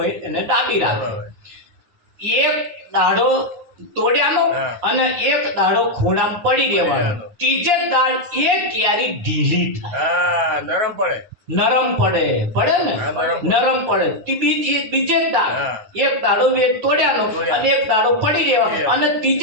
એને દાબી રાખે. એક દાડો તોડ્યાનો અને એક દાડો ખૂણામાં પડી દેવાનો. ત્રીજે દાડ એ કેરી ઢીલી થાય, નરમ પડે ને, નરમ પડે. બીજે દાડ એક દાડો તોડ્યાનો અને એક દાડો પડી રહેવાનો અને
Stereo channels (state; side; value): late; left; 9.7 ms